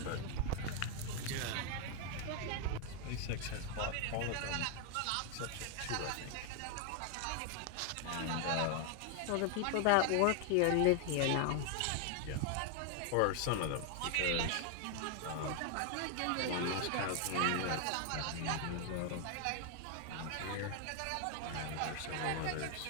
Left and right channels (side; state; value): both; different; correlation 0.00